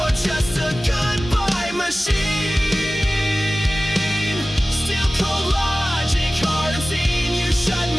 just a goodbye machine. Still cold logic, hard and seen. You shut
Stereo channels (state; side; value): normal; both; correlation 0.97